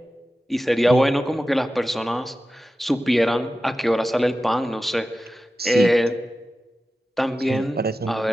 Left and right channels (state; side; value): normal; both; correlation 0.94